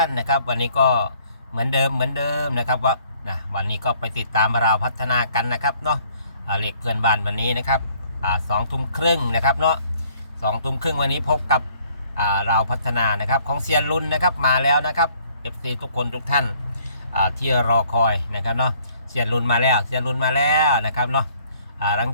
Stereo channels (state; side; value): inverted; both; correlation -0.61